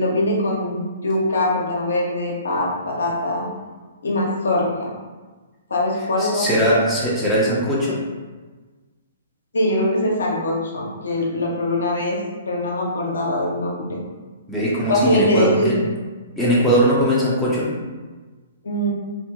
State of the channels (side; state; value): both; inverted; correlation -0.42